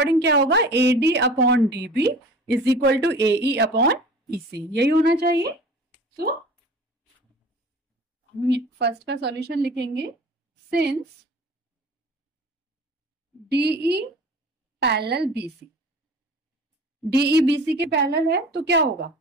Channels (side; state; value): both; normal; correlation 0.42